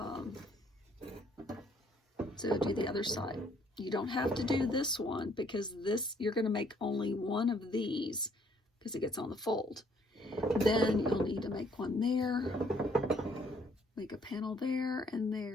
do the other side. You don't have to do this one, because this, you're going to make only one of these because it gets on the fold. Then you'll need to make one there, make a panel there and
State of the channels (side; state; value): both; normal; correlation 0.64